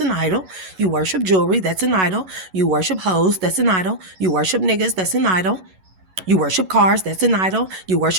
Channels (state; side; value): late; left; 11 ms